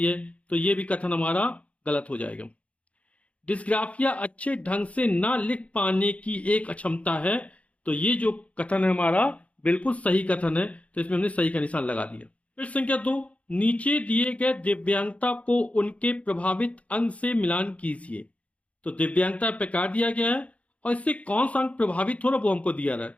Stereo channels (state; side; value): late; right; 0.065 ms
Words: है, तो ये भी कथन हमारा गलत हो जाएगा। डिस्ग्राफिया अच्छे ढंग से ना लिख पाने की एक अक्षमता है, तो ये जो कथन है हमारा बिल्कुल सही कथन है, तो इसमें हमने सही का निशान लगा दिया। फिर संख्या 2, नीचे दिए गए दिव्यांगता को उनके प्रभावित अंग से मिलान कीजिए। तो दिव्यांगता प्रकार दिया गया है, और इससे कौन सा अंग प्रभावित हो रहा है वो हमको दिया रहा है।